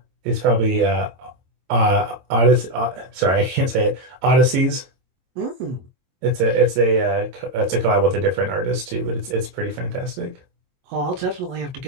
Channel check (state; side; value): late; left; 22 ms